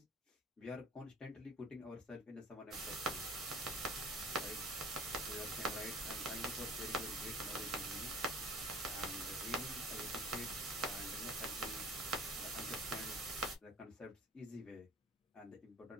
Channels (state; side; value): normal; both; correlation 0.45